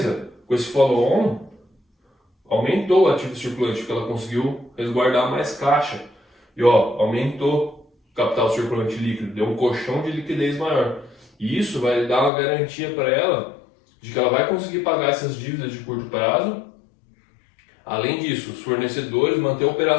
com esse follow-on, aumentou o ativo circulante, porque ela conseguiu resguardar mais caixa. E ó, aumentou o capital circulante líquido, deu um colchão de liquidez maior. E isso vai dar uma garantia para ela de que ela vai conseguir pagar essas dívidas de curto prazo. Além disso, os fornecedores manter a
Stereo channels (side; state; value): right; drops out; at 12.3 s